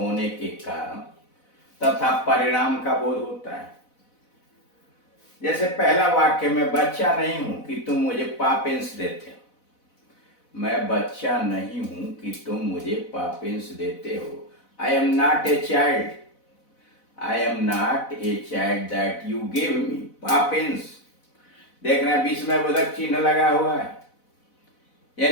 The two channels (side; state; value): right; late; 4.0 ms